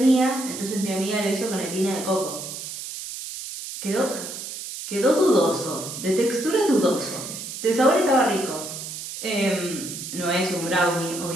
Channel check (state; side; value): noise; right; hiss, 8 dB below the sound